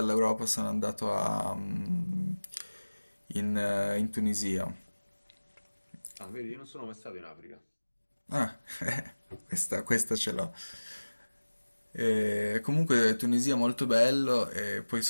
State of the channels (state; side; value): inverted; both; correlation -1.00